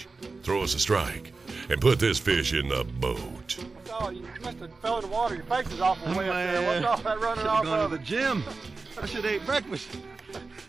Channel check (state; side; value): quieter; left; 4.0 dB